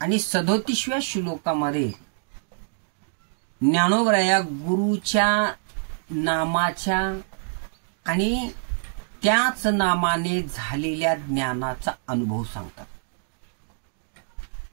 37व्या श्लोकामध्ये ज्ञानोबाराया गुरुच्या नामाच्या आणि त्याच नामाने झालेल्या ज्ञानाचा अनुभव सांगतात.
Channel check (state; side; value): silent; left; digital silence